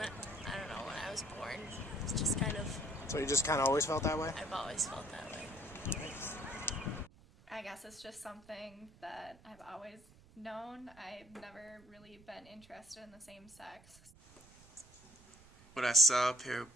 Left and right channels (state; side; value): noise; right; rumble, 24 dB below the sound